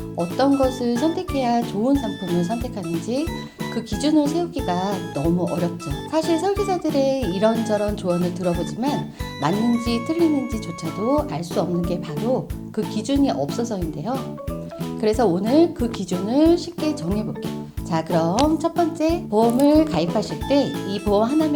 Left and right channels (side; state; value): both; identical; correlation 1.00